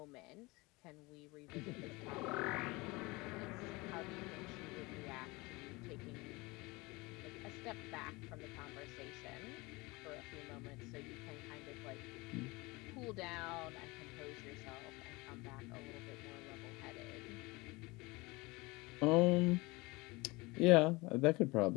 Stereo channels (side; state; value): right; quieter; 23.7 dB